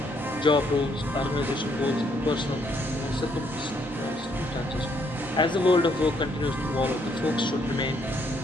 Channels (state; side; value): normal; both; correlation 0.70